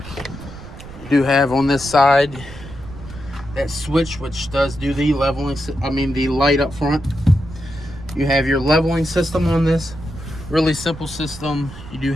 You do have on this side that switch, which does do the leveling, the light up front. You have your leveling system on this. Really simple system. You do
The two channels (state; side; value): noise; right; rumble, 15 dB below the sound